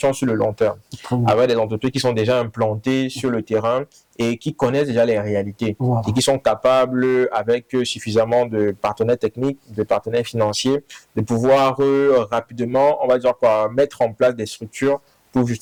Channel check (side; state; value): both; identical; correlation 1.00